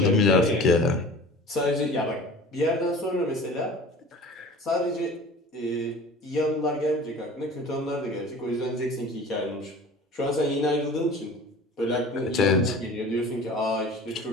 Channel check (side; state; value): both; normal; correlation 0.41